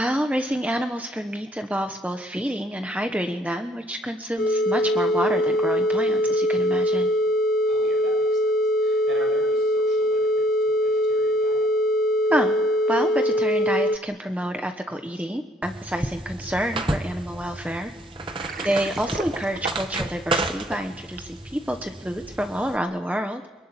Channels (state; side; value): normal; both; correlation 0.63